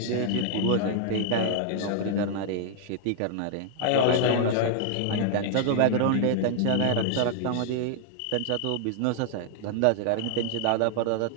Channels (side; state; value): both; different; correlation 0.00